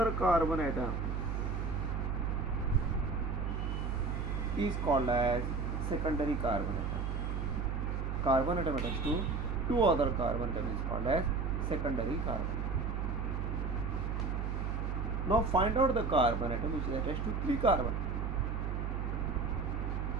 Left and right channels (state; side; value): noise; right; hum, 1 dB below the sound